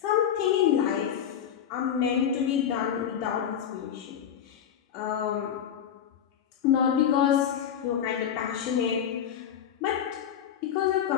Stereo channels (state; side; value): quieter; right; 9.0 dB